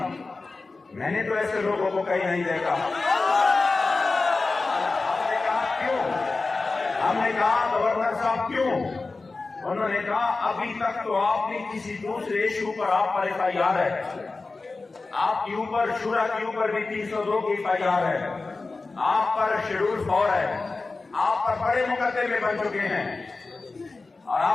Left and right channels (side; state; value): right; quieter; 3.7 dB